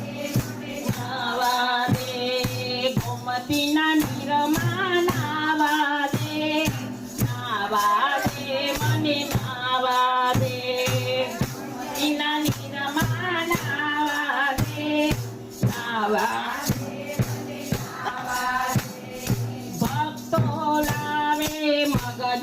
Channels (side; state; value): both; identical; correlation 1.00